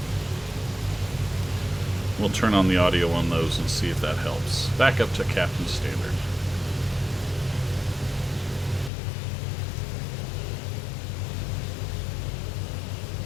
We'll turn on the audio on those and see if that helps. Back up to Captain Standard.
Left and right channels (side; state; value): right; drops out; at 8.9 s